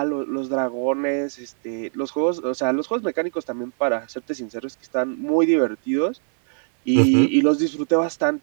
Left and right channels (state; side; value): silent; left; digital silence